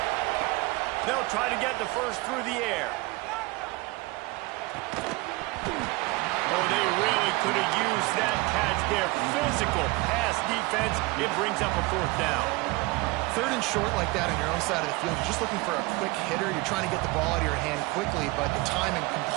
They'll try to get the first through the air. Oh, they really could have used that catch there. Physical pass defense. It brings up a 4th down. 3rd and short like that on your own side of the field. You're just looking for a quick hitter. You're trying to get the ball out of your hand quickly, but the timing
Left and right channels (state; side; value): quieter; left; 23.2 dB